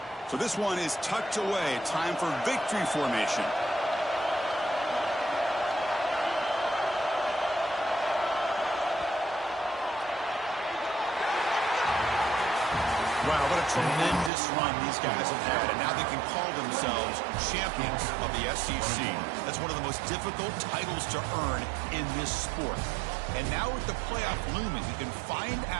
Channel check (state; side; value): drops out; left; at 14.3 s